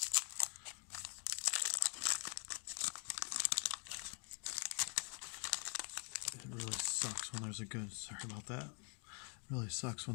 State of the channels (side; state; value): right; quieter; 39.0 dB